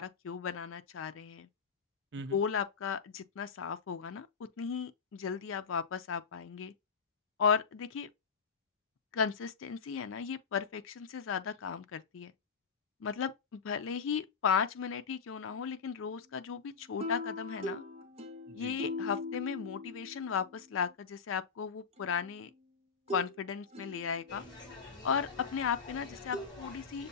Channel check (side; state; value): right; quieter; 5.9 dB